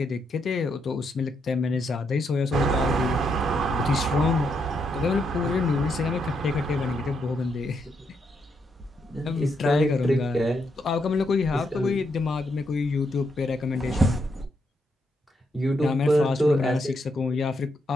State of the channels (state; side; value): normal; both; correlation 0.79